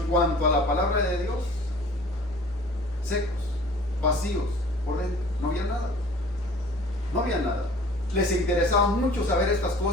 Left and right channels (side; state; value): both; normal; correlation 0.48